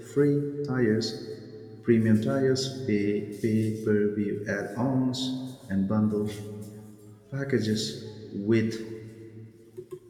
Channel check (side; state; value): both; identical; correlation 1.00